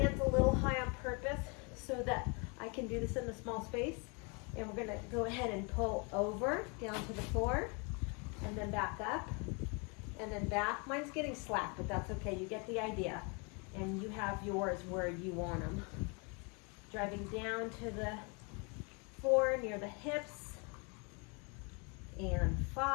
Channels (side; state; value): right; quieter; 32.9 dB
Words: a little high on purpose so that I can do this in a small space. And we're going to go ahead and pull over down to the floor and then back up and then back. Mine's getting slack, but that's okay. You get the idea. And you have yours where you want them. Driving down to the 4 near the hips. And